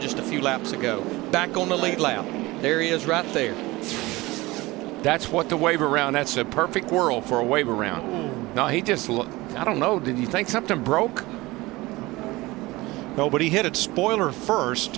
just a few laps ago. Back on the lead lap. There he is right there. That's what the wave around. That's a perfect whirl for a wave around. No, he just, I don't know. Did you think something broke? No, but he hit it spoiler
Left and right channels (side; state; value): left; quieter; 20.7 dB